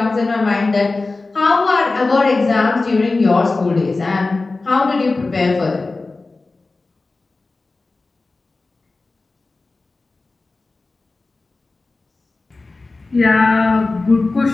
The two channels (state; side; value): quieter; right; 3.5 dB